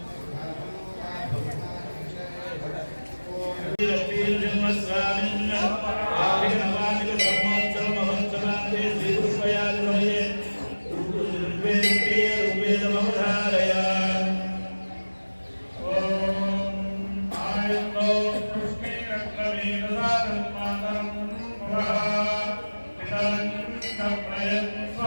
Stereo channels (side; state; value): both; inverted; correlation -1.00